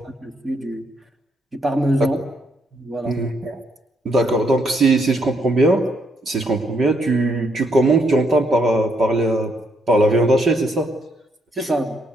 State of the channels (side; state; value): both; normal; correlation 0.74